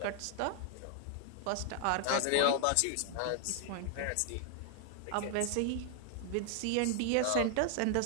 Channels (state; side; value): different; both; correlation 0.00